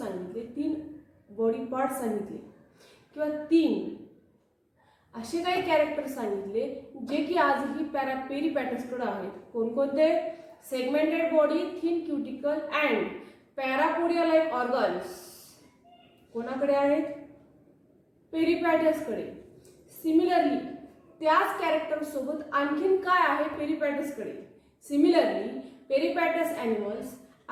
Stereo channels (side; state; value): both; identical; correlation 1.00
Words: 3 बॉडी पार्ट सांगितले किंवा 3 असे काही कॅरेक्टर सांगितले जे की आजही पेरिपॅटसकडे आहेत. कोणकोणते? Segmented body, thin cuticle and parapodia like organs कोणाकडे आहेत? पेरिपॅटसकडे. सिमिलरली त्याच कॅरेक्टर सोबत आणखीन काय आहे पेरिपॅटसकडे? Similarly peripatus animals